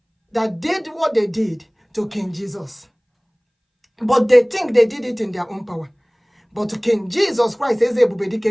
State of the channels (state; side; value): identical; both; correlation 1.00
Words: that did what they did to King Jesus? But they think they did it in their own power. But King Jesus Christ, Igbo-Biafra,